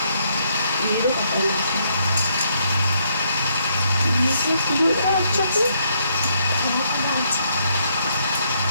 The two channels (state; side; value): inverted; both; correlation -0.73